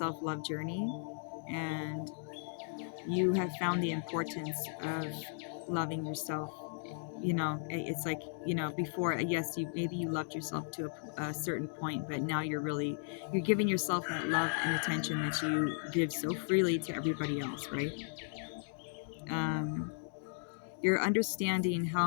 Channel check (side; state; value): right; silent; digital silence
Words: journey, and you have found the importance of loving yourself. It's like, before, yes, you maybe you loved yourself to a certain point, but now you're giving yourself that love and attention that you give so freely to everybody else, right? um, you're understanding how